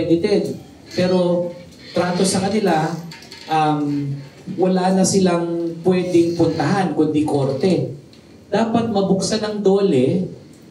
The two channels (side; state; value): both; identical; correlation 1.00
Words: Pero trato sa kanila, wala na silang pwedeng puntahan kundi korte. Dapat mabuksan ng DOLE